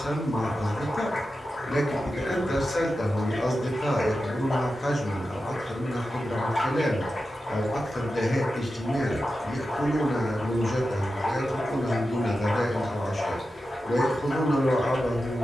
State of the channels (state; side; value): normal; both; correlation 0.91